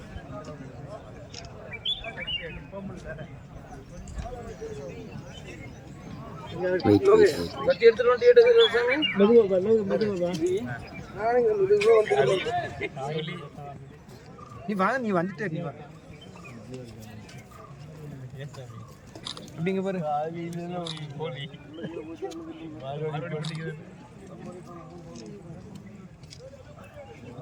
நீ வா, நீ வந்துட்டே நீ வா. அப்படிங்க பாரு.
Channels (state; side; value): identical; both; correlation 1.00